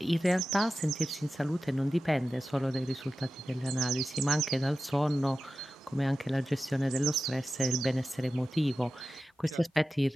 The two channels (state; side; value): normal; both; correlation 0.93